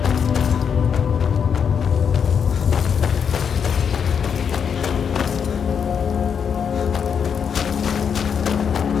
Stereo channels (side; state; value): right; quieter; 7.1 dB